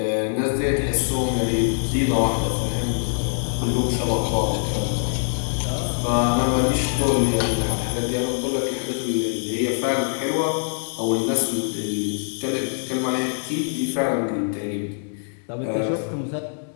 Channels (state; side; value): silent; right; 63 dB below the other